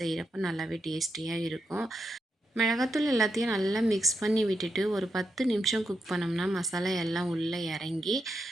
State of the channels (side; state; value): both; normal; correlation 0.84